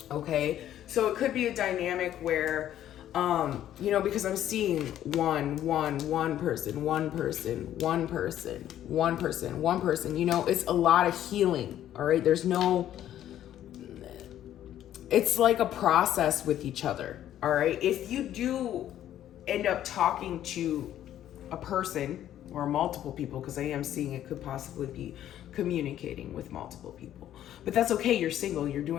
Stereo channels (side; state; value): right; quieter; 11.7 dB